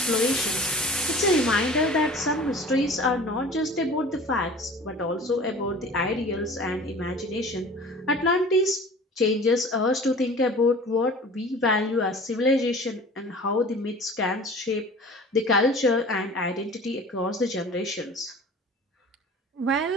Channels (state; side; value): normal; both; correlation 0.43